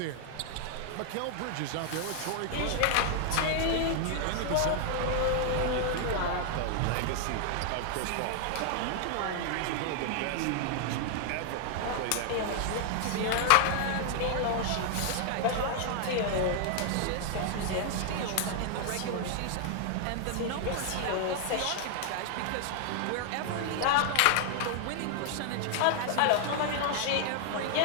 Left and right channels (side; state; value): both; different; correlation 0.00